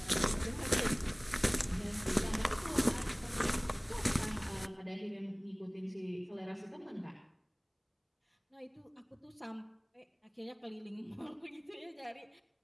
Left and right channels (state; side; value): identical; both; correlation 1.00